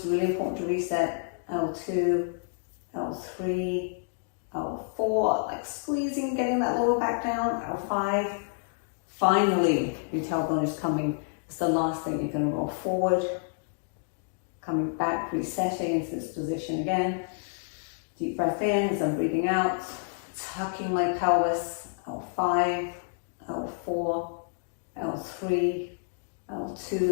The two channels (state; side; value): silent; right; digital silence